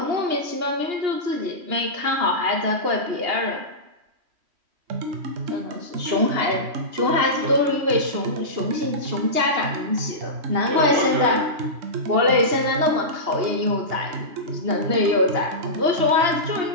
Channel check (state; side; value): late; left; 2.8 ms